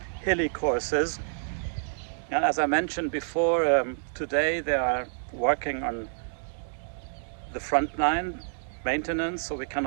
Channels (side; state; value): left; silent; digital silence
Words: hilly courses. And as I mentioned before, today they are working on the front nine maintenance, so we